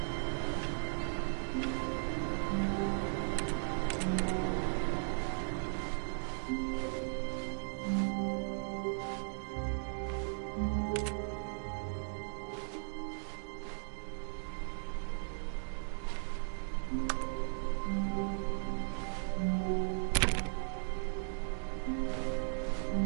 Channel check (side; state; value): left; silent; digital silence